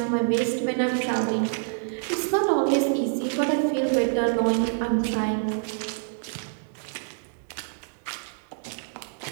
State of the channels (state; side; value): silent; left; digital silence